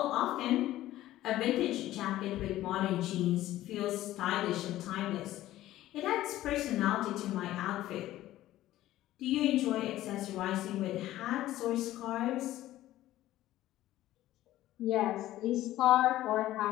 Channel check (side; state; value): right; quieter; 14.7 dB